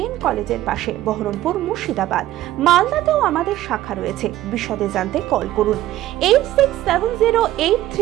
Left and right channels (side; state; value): left; quieter; 14.5 dB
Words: কলেজের পাশে, বহরমপুর, মুর্শিদাবাদ। মালদাতেও আমাদের শাখা রয়েছে। বিশদে জানতে কল করুন